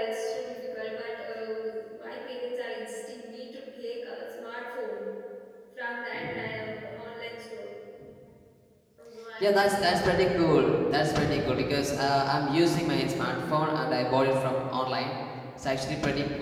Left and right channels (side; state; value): both; identical; correlation 1.00